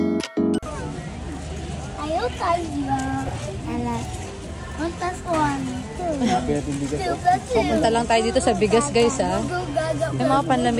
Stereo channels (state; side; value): identical; both; correlation 1.00